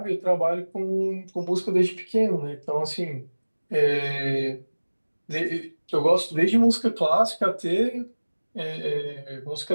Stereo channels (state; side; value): inverted; both; correlation -1.00